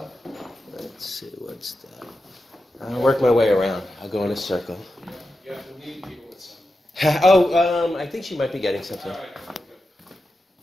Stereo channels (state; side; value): normal; both; correlation 0.90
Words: Let's see, what's that? I'll work my way around. I'll go in a circle. Oh, I think she might be getting something.